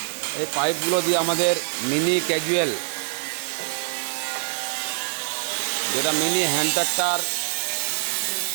এই পাইপগুলো দিয়ে আমাদের মিনি ক্যাজুয়াল, যেটা mini hand tractor,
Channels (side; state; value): left; silent; digital silence